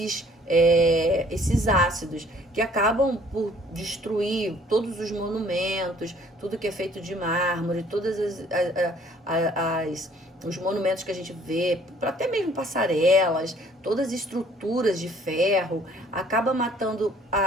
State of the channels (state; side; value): normal; both; correlation 0.58